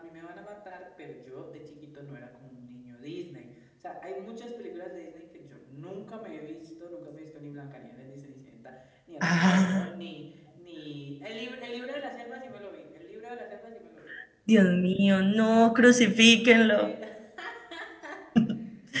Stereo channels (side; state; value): both; identical; correlation 1.00